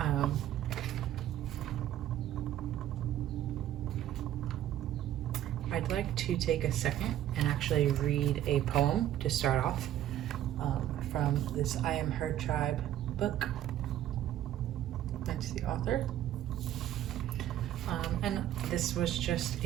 I'd like to take a second and actually read a poem to start off from this I Am Her Tribe book. That's the author. And this was just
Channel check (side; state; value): left; quieter; 12.2 dB